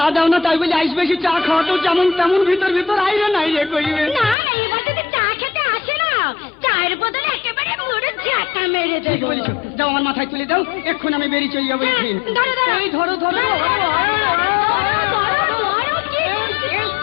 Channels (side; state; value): right; drops out; at 4.4 s